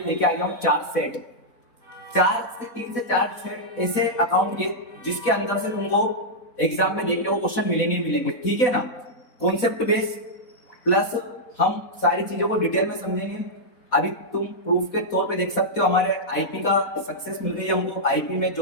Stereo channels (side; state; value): right; late; 4.1 ms